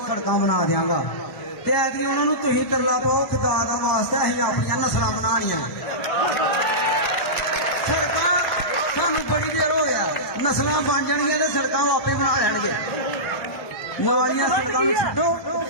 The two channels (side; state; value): right; late; 1.0 ms